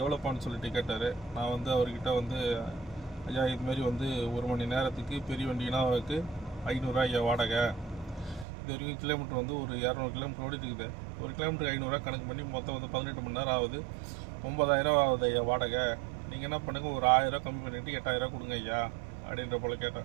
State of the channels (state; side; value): drops out; left; at 8.5 s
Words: எவ்வளோப்பான்னு சொல்லிட்டு கேட்டார். நான் வந்து அவர்கிட்ட வந்து, ஐயா இதுமாரி வந்து 1 மணி நேரத்துக்கு பெரிய வண்டினாவுக்கு 500 ஐயா வாடகை. இது வரைக்கும் கிலோமீட்டர் வந்து ஒரு 200 கிலோமீட்டர் ஓடிட்டு இருக்குது. ஒரு கிலோமீட்டருக்கு 500 கணக்கு பண்ணி மொத்தம் வந்து 18 மணி நேரம் ஆகுது. 9000 ஆகுது ஐயா வாடகை. நீங்கள் என்ன பண்ணுங்கள், ஒரு 1000 கம்மி பண்ணிவிட்டு 8000 கொடுங்க ஐயா அப்படின்ற போல்